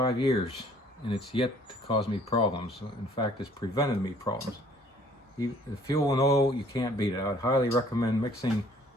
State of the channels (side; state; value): both; normal; correlation 0.58